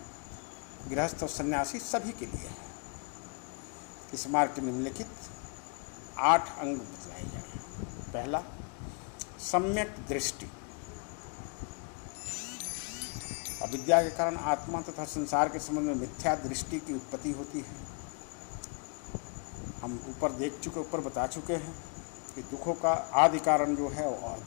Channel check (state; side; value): quieter; right; 38.9 dB